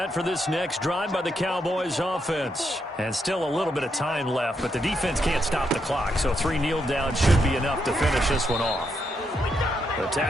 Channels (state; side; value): normal; both; correlation 0.80